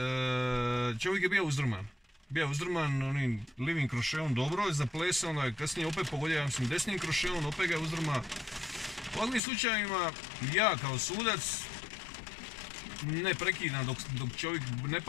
čovjek je bio uzdrman. Bio uzdrman onim livim krošeom, dobro je zaplesao, onda je kasnije opet pogodio, ja mislim, desnim krošeom, opet ga je uzdrma. U ovakvim slučajima ja kao sudac ne prekidam dok čovjek ne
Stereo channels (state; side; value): drops out; right; at 9.4 s